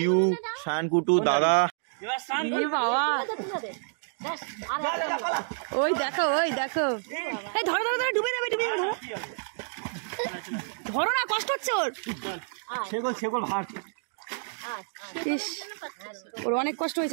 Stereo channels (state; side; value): silent; left; digital silence